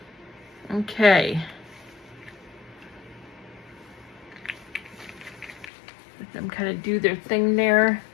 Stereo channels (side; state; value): right; drops out; at 5.7 s